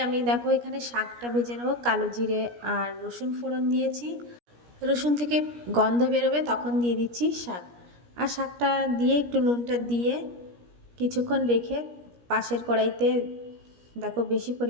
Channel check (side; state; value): left; late; 17 ms